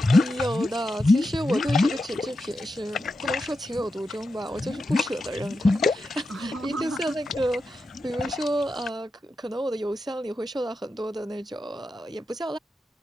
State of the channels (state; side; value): normal; both; correlation 0.89